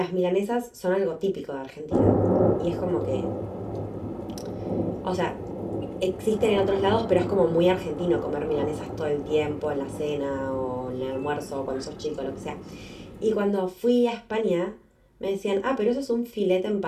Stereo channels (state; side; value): identical; both; correlation 1.00